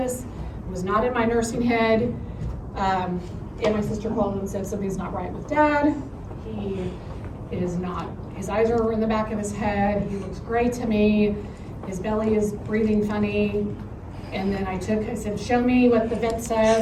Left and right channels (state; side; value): identical; both; correlation 1.00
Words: was not in my nursing head, and my sister called and said something's not right with dad. He is not, his eyes are in the back of his head, he looks gray to me, his belly is breathing funny. And then I said, show me what the vent